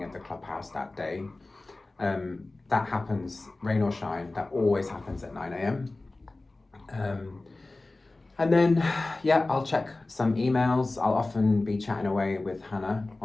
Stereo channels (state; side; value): quieter; right; 3.1 dB